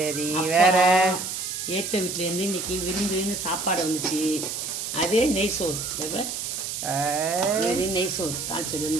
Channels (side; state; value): right; noise; hiss, 5 dB below the sound